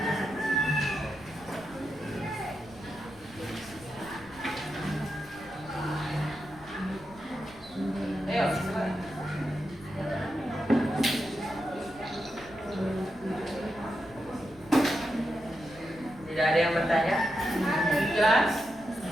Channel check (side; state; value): left; noise; rumble, 22 dB below the sound